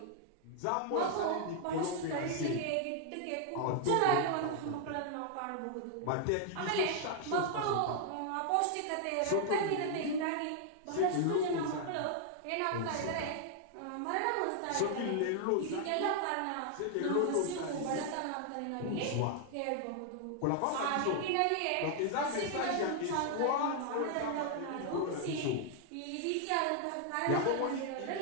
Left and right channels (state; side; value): different; both; correlation 0.00